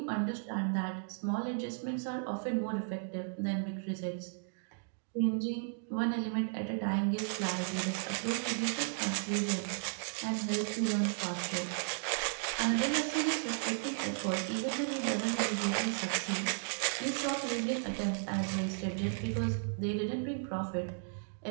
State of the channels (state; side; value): silent; left; digital silence